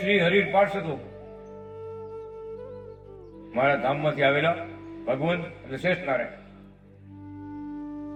હરિ પાર્ષદો. મારા ધામમાંથી આવેલા ભગવંત અને શ્રેષ્ઠ નારાયણ.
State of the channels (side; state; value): both; identical; correlation 1.00